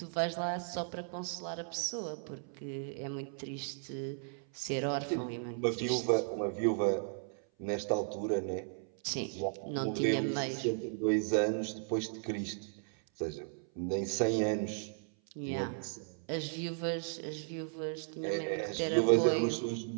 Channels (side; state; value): left; silent; 54 dB below the other